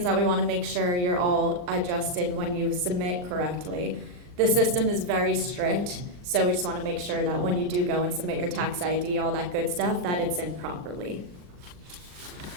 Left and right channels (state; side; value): late; left; 39 ms